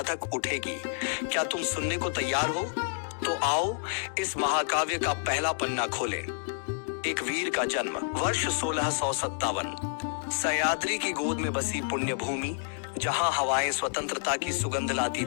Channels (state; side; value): silent; right; digital silence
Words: उठेगी। क्या तुम सुनने को तैयार हो? तो आओ इस महाकाव्य का पहला पन्ना खोलें। एक वीर का जन्म, वर्ष 1657। सह्याद्री की गोद में बसी पुण्य भूमि, जहां हवाएं स्वतंत्रता की सुगंध लाती